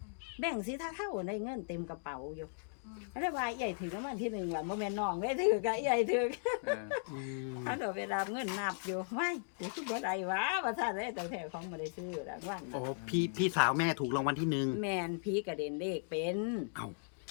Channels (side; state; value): right; silent; digital silence